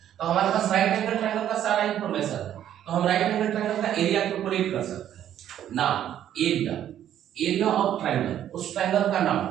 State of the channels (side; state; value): left; quieter; 10.8 dB